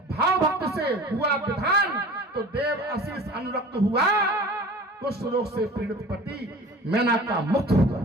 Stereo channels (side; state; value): both; normal; correlation 0.41